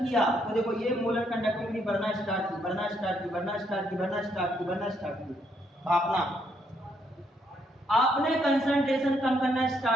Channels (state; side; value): normal; both; correlation 0.73